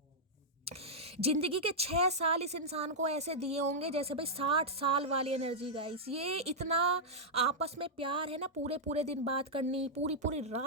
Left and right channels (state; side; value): normal; both; correlation -0.08